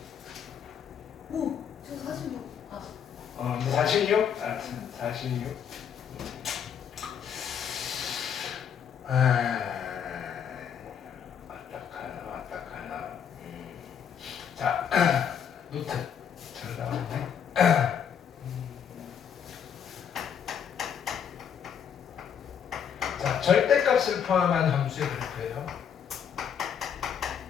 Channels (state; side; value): quieter; right; 8.0 dB